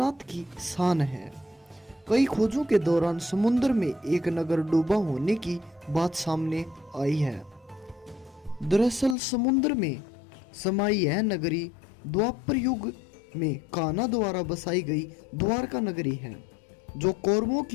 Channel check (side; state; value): right; drops out; at 9.2 s